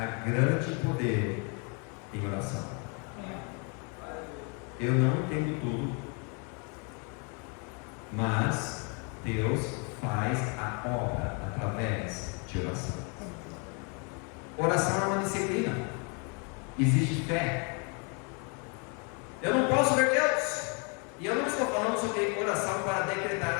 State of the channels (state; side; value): quieter; right; 35.8 dB